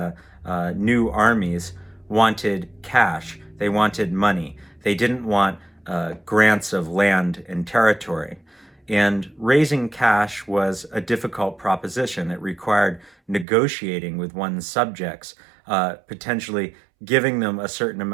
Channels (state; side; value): drops out; left; at 13.5 s